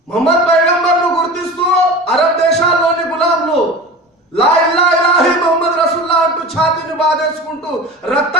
మొహమ్మద్ పైగంబర్ను గుర్తిస్తూ అరబ్ దేశాల్లోని గులాంలు లా ఇల్లా ఇలాహి మొహమ్మద్ రసూల్లా అంటూ ఛాతీని బాధేసుకుంటూ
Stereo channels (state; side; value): normal; both; correlation 0.33